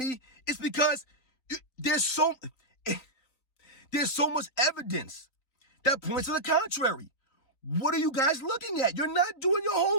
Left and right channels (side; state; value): right; late; 3.9 ms